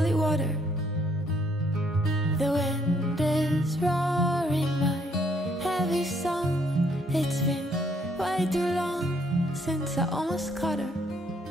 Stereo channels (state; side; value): normal; both; correlation 0.68